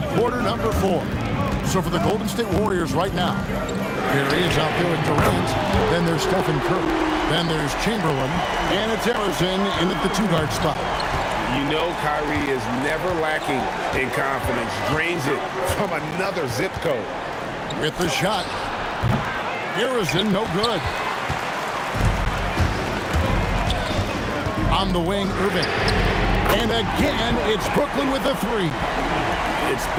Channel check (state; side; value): identical; both; correlation 1.00